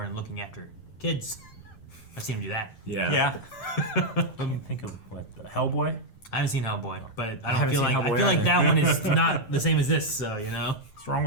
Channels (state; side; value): late; right; 9.2 ms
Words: and looking after kids, I've seen him do that. Yeah. Let me think of what Hellboy. I haven't seen Hellboy, but I haven't feel seen like Hellboy like that one is not the same as this. So you know. What's wrong